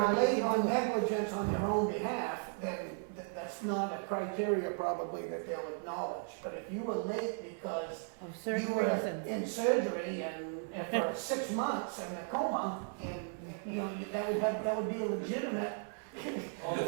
you're you late can on do it. negligence on your own behalf, then that's not a criteria probably that they'll acknowledge. But if you were late because Of you certain were reasons. in surgery and for 6 months in a coma, and, you know, that would be a legitimate. Well,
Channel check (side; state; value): left; silent; 54 dB below the other